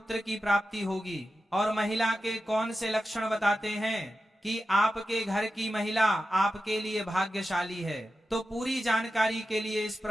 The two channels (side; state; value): both; normal; correlation 0.92